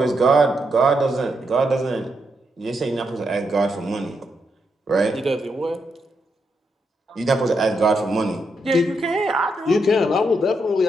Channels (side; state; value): both; normal; correlation 0.81